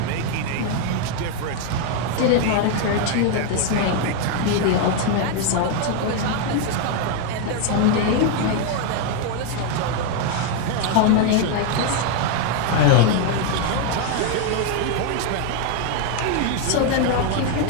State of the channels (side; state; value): both; different; correlation 0.01